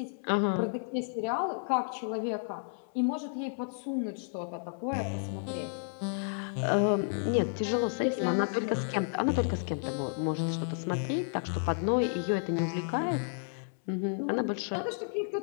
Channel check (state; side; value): silent; right; 57 dB below the other